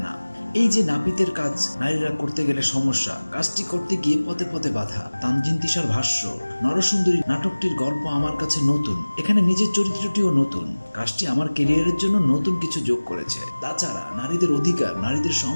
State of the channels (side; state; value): both; inverted; correlation -1.00